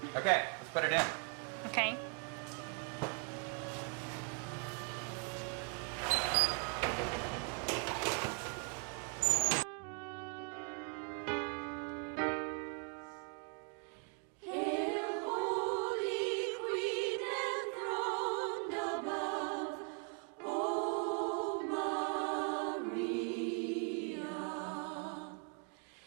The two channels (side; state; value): left; quieter; 39.6 dB